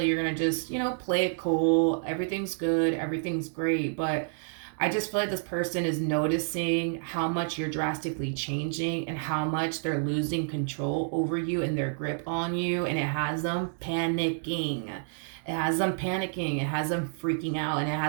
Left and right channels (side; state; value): left; silent; digital silence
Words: like you're going to just, play it cool. Everything's good. Everything's great. But I just feel like this person is noticing how much you're drastically changing and how much they're losing control over you and their grip on you. And it has them panicking. It has them panicking. It has them freaking out. And it